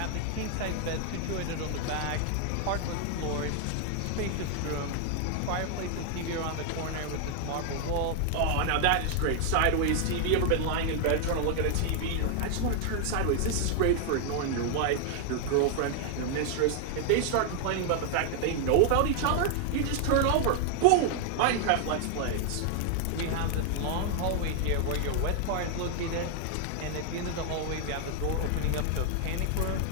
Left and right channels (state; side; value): different; both; correlation 0.00